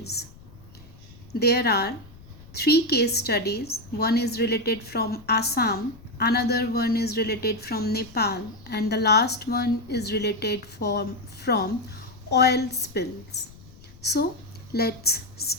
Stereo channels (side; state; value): left; noise; rumble, 21 dB below the sound